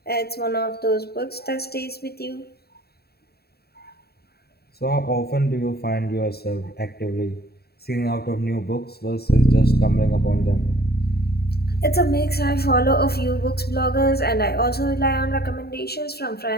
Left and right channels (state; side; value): late; right; 0.46 ms